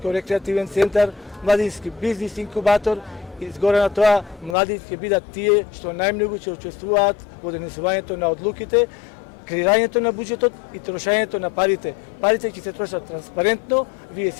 центар, младински бизнис инкубатор и згоре на тоа младите ќе бидат тие што најмногу ќе учествуваат во донесувањето на одлуките, креирањето на буџетот и трошењето на парите. Парите ќе се трошат транспарентно, вие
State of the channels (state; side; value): drops out; right; at 4.5 s